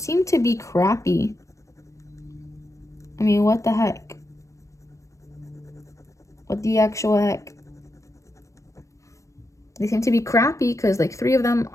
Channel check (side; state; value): right; late; 0.15 ms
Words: to be crappy? I mean, what the heck? What the actual heck? They seem to be crappy because like 3 of them